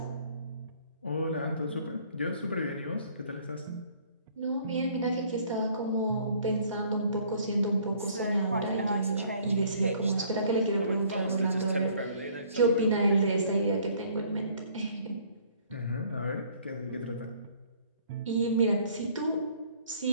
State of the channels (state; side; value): inverted; both; correlation -0.58